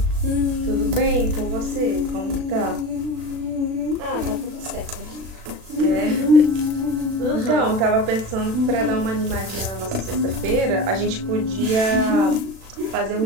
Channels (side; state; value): left; late; 36 ms